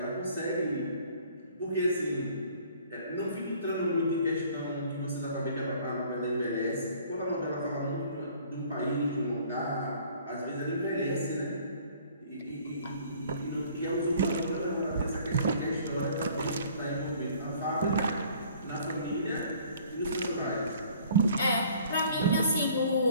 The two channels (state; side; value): inverted; both; correlation -0.55